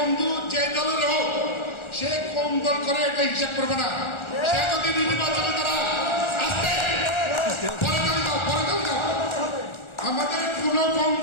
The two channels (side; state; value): right; late; 1.4 ms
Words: যে দলের হোক, সে কোন দল করে এটা হিসাব করবে না। সে যদি নির্বাচনে তারা আসতে পরে দাও। আমাদের কোন